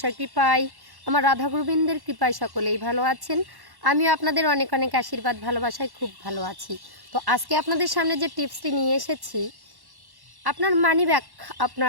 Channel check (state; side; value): late; left; 1.1 ms